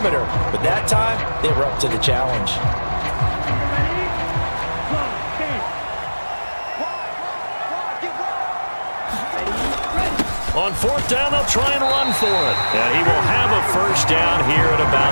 but that time they were up to the challenge. On 4th down, they'll try and run for it. And he will have a 1st down here at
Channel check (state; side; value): inverted; both; correlation -1.00